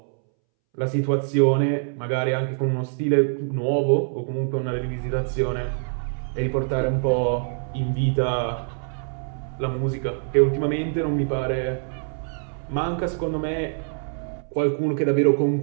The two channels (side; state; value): left; silent; 62 dB below the other